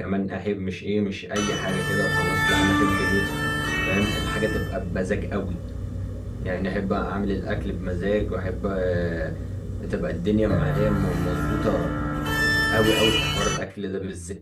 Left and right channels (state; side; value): identical; both; correlation 1.00